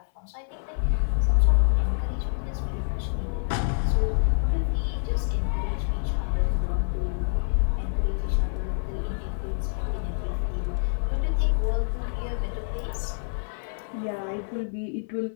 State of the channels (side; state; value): right; silent; 60 dB below the other